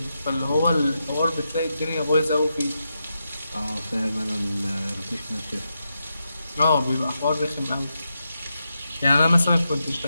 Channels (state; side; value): inverted; both; correlation -0.86